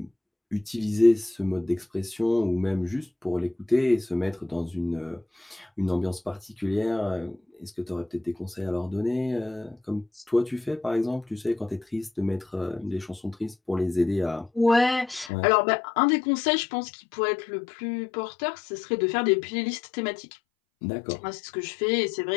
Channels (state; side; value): drops out; right; at 15.3 s